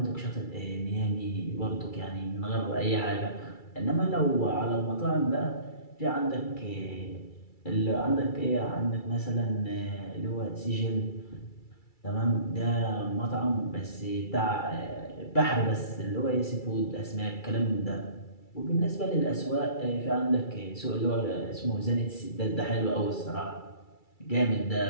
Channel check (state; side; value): late; right; 2.3 ms